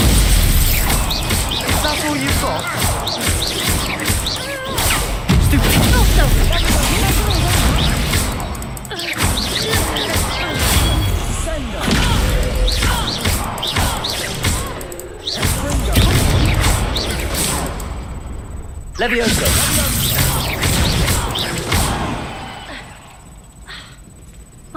That's all you've got? Levioso!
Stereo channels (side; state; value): both; identical; correlation 1.00